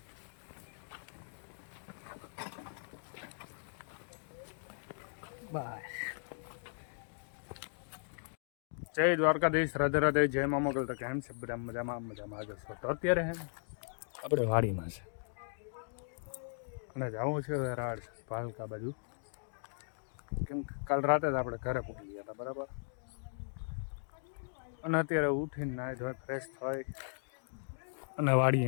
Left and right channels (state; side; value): silent; right; digital silence